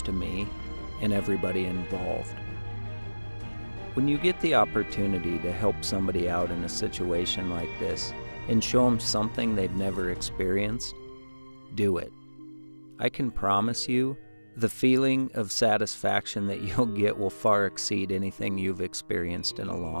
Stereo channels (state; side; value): inverted; both; correlation -1.00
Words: to me and everybody involved. When you get the opportunity to help somebody out in a situation like this and show them something they've never experienced, do it. I can promise you, the feeling of satisfaction that you'll get will far exceed anything you've experienced in a